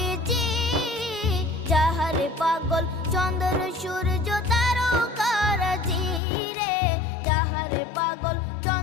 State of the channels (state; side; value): drops out; right; at 6.2 s